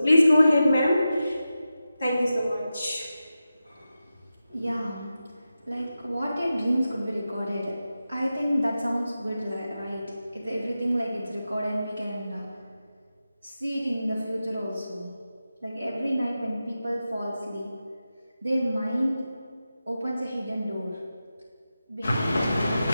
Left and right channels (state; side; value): inverted; both; correlation -0.92